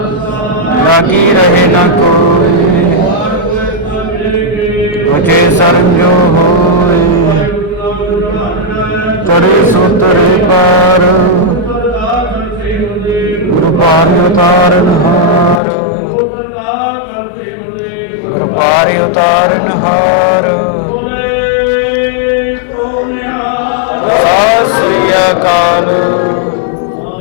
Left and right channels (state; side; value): drops out; right; at 15.6 s